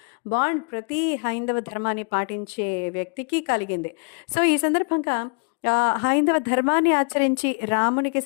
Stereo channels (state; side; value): quieter; right; 38.0 dB